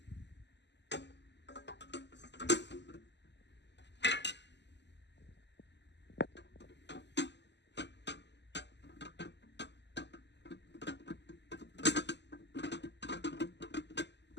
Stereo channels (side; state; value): right; late; 0.51 ms